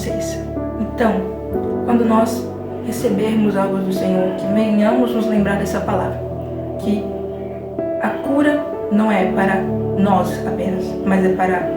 Então, quando nós recebermos algo do Senhor, que venhamos nos lembrar dessa palavra, que a cura não é para nós apenas, mas é para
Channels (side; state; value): both; identical; correlation 1.00